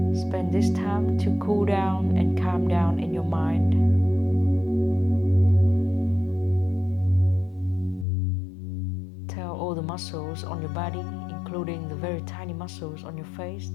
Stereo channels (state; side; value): drops out; right; at 8.1 s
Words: Spend this time to cool down and calm down in your mind. Tell all the muscles on your body, including the very tiny muscles on your face,